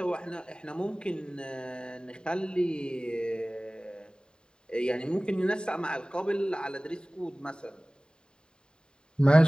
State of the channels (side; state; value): right; late; 0.048 ms